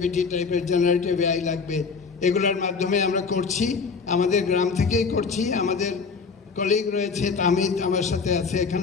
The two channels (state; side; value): quieter; right; 5.0 dB